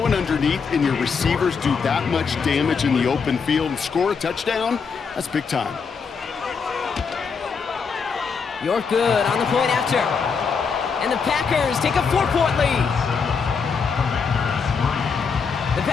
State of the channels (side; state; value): right; quieter; 5.6 dB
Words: it underneath and your receivers do that much damage in the open field and score a touchdown. That's big time. You're good on the point after. And the Packers take a 4-point lead. The